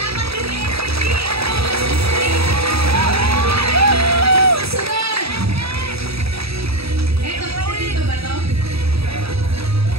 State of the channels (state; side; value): late; left; 0.77 ms